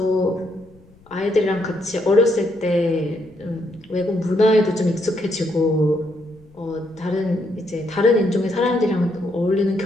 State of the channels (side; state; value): left; noise; rumble, 28 dB below the sound